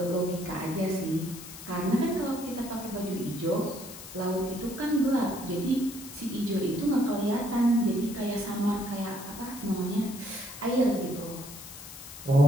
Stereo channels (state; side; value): noise; left; hiss, 14 dB below the sound